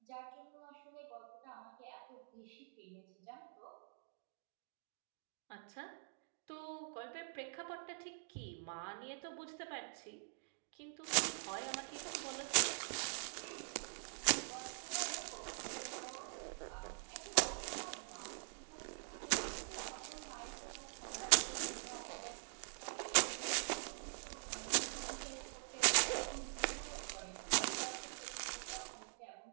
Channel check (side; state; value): left; silent; digital silence